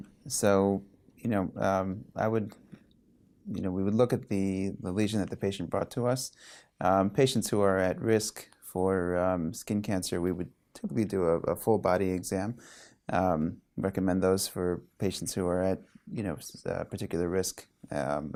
So, I would, we would look at the lesion that the patient brought to us. Patients who are at risk for skin cancer, we would typically do a full body exam. Recommend those for patients who are at, particular risk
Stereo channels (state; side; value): identical; both; correlation 1.00